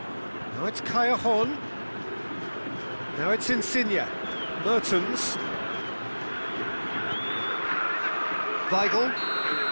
Now it's Callejon. Now it's Insigne. Mertens. Weigl.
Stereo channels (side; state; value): both; inverted; correlation -1.00